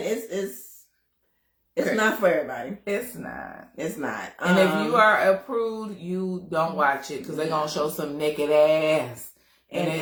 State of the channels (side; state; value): both; identical; correlation 1.00